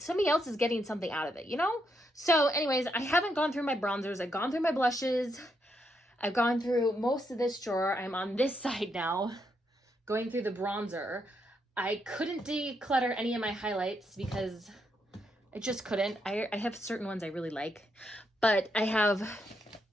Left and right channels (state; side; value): normal; both; correlation 0.79